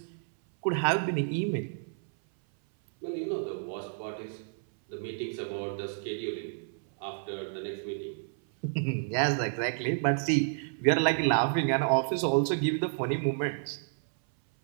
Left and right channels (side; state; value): left; silent; 58 dB below the other